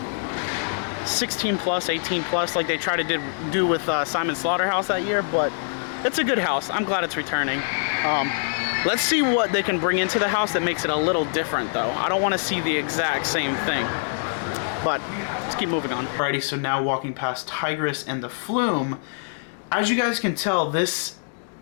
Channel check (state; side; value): silent; right; digital silence